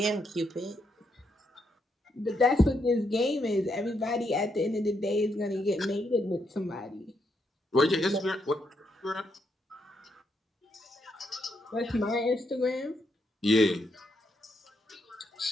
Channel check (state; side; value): normal; both; correlation 0.78